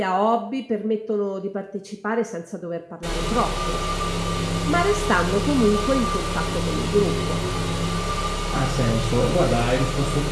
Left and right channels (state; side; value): identical; both; correlation 1.00